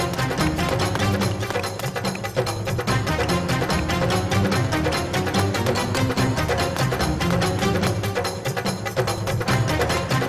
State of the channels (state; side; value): identical; both; correlation 1.00